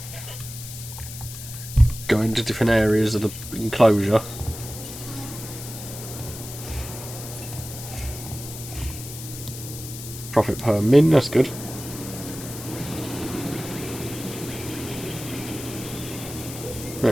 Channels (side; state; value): left; noise; hiss, 11 dB below the sound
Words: going to different areas of the enclosure. Profit per min, that's good.